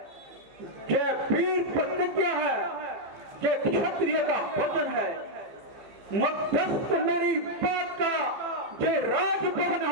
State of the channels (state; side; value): late; left; 15 ms